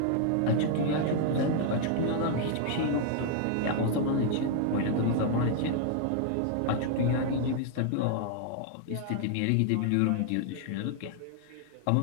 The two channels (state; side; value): different; both; correlation 0.00